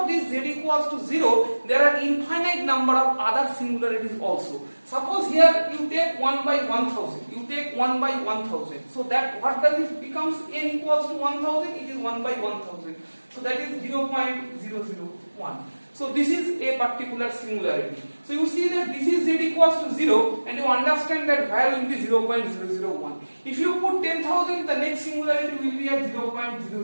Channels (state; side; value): inverted; both; correlation -1.00